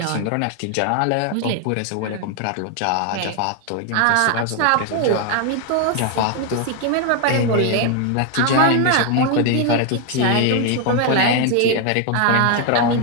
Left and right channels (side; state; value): both; different; correlation 0.01